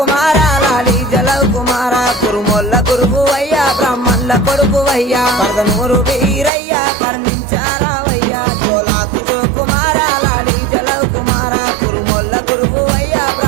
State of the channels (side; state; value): left; drops out; at 6.5 s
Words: లాలి జలవ్ కుమార కురుమొల్ల గురువయ్యా బ్రాహ్మణుల కొడుకువయ్యా పరదనూరు వీరయ్యా కర్ణించారావయ్యా జోలాకు జో కుమార లాలి జలవ్ కుమార కురుమొల్ల గురువయ్యా